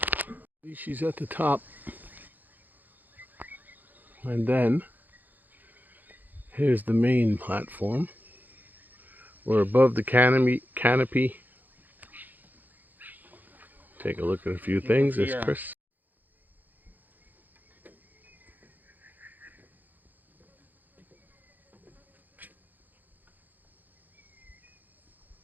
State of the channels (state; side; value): late; left; 0.085 ms